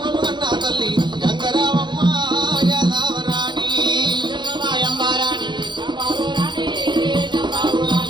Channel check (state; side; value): late; left; 0.22 ms